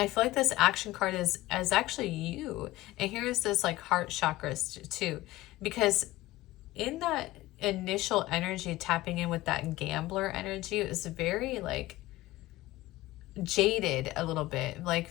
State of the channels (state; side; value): quieter; right; 17.7 dB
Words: feel like this action card is actually you. And here's this like heart chakras too, because in that initial energy, tapping in with that gambler energy, it was very like jaded a little bit, like